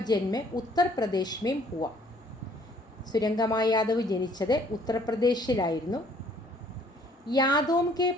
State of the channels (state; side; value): normal; both; correlation 0.60